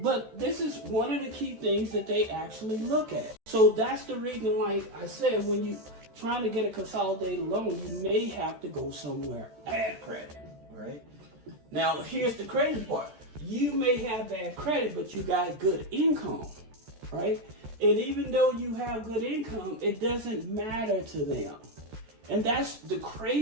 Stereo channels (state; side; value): late; left; 14 ms